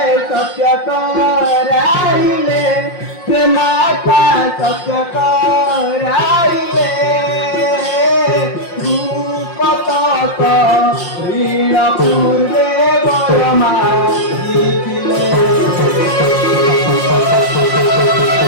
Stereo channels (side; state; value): right; late; 5.6 ms